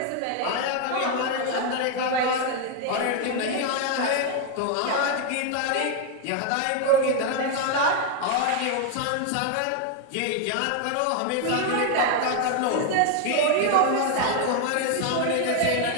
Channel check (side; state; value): both; different; correlation 0.01